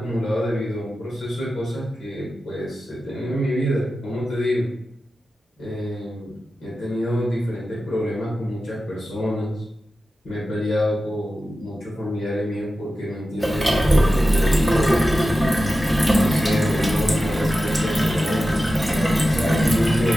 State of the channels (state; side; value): normal; both; correlation 0.93